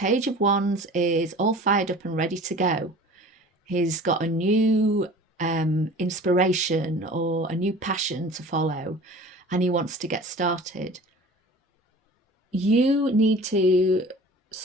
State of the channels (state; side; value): normal; both; correlation 0.42